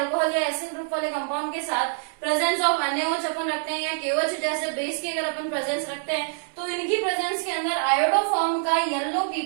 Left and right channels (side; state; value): left; silent; digital silence